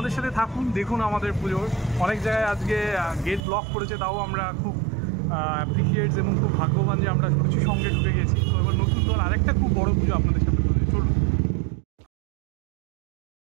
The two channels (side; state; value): left; drops out; at 3.4 s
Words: সাথে থাকুন, দেখুন আমাদের পুজোর। অনেক জায়গায় আজকে গেট ব্লক করেছে, তাও আমরা খুব অ্যাপ্রিসিয়েটস এবং খুব ভাগ্যবান যে আমরা সূচি সঙ্গে ঢুকে গেছি। তো এবার নতুন দল আরেকটা খুব বড় পুজো আপনাদের সাথে চলুন।